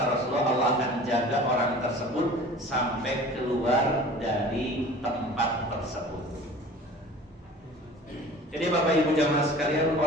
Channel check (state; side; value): normal; both; correlation 0.43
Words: Rasulullah, Allah akan jaga orang tersebut sampai keluar dari tempat tersebut. Jadi Bapak Ibu jamaah sekalian,